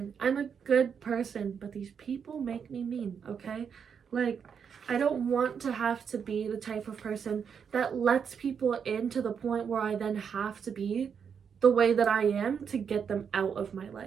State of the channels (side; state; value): left; quieter; 7.0 dB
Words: I'm a good person, but these people make me mean, okay? Like, I don't want to have to be the type of person that lets people in to the point where I then have to be the way that I am to get them out of my